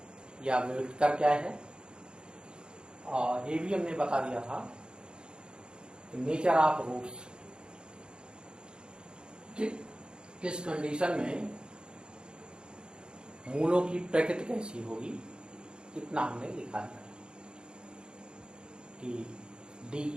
या विविधकर क्या है। और ये भी हमने बता दिया था नेचर ऑफ रूट्स, किस कंडीशन में मूलों की प्रकृति कैसी होगी, इतना हमने लिखा था कि d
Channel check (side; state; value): left; late; 0.050 ms